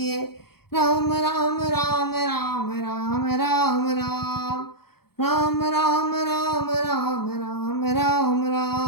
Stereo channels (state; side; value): late; right; 0.95 ms